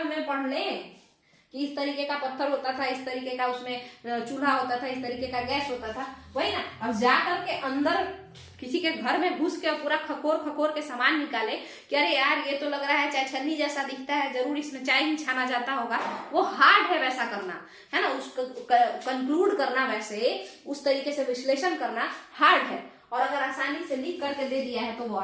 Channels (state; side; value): identical; both; correlation 1.00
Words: में पढ़ लें कि इस तरीके का पत्थर होता था, इस तरीके का उसमें चूल्हा होता था, इस तरीके का गैस होता था, वही ना। अब जाकर के अंदर किसी के घर में घुस के पूरा खकोर के सामान निकाले कि अरे यार ये तो लग रहा है चाय छन्नी जैसा दिखता है, जरूर इसमें चाय ही छाना जाता होगा, वो हार्ड है वैसा करना, है ना। उसको कंक्लूड करना, वैसे उस तरीके से विश्लेषण करना हार्ड है, और अगर आसानी से लिख करके दे दिया है तो वो